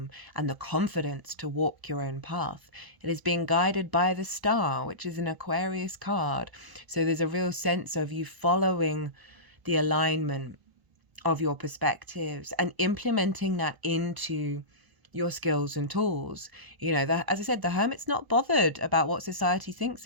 and the confidence to walk your own path. It is being guided by the star, which is an Aquarius card. So there's a real sense of you following the alignment of your perspectives and implementing that into your skills and tools. You know, as I said, the Hermit's not bothered about what society thinks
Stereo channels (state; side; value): late; left; 1.0 ms